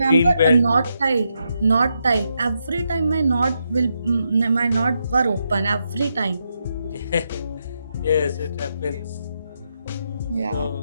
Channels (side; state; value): both; inverted; correlation -0.82